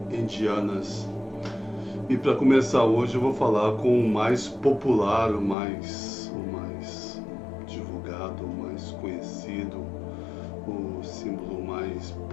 indianas. E para começar hoje eu vou falar com o mais popular, o mais divulgado, o mais conhecido, o símbolo mais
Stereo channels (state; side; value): drops out; right; at 5.6 s